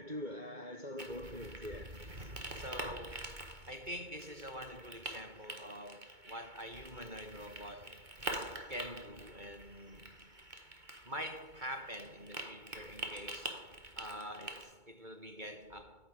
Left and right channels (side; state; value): left; late; 2.2 ms